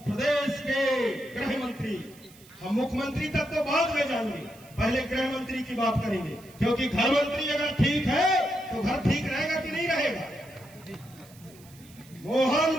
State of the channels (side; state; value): right; noise; hiss, 24 dB below the sound